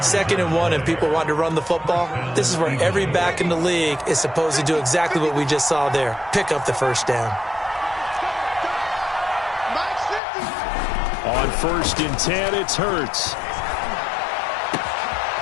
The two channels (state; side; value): drops out; right; at 10.2 s